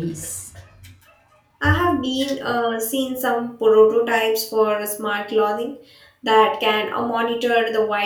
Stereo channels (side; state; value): both; identical; correlation 1.00